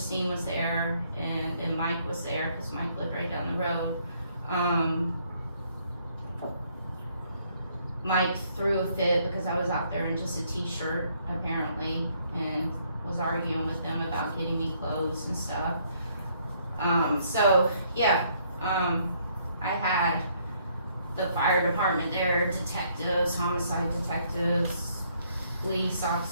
was there, and then Mike was there, because Mike lived right down the road. Mike threw a fit because I was out there in just a t-shirt, apparently, and was arguing with them about getting me clothes and stuff. So, yeah, I had the fire department there, detectives, homicide detectives, police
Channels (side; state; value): both; inverted; correlation -0.68